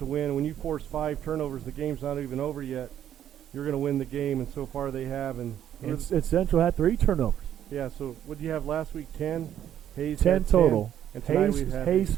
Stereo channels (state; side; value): quieter; left; 10.5 dB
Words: win. When you force 5 turnovers, the game's not even over yet. You're going to win the game, and so far they have. And Central had 3 turnovers. Yeah, so what did you have last week? 10? Hayes 10 had total. 10, and Hayes